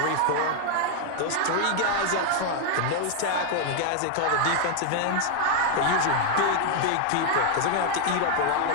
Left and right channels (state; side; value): different; both; correlation 0.00